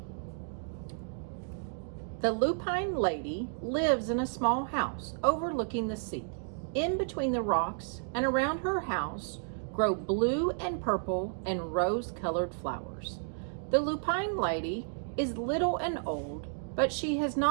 The lupine lady lives in a small house overlooking the sea. In between the rocks and around her house grow blue and purple and rose-colored flowers. The lupine lady is little and old, but she has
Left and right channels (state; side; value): silent; left; digital silence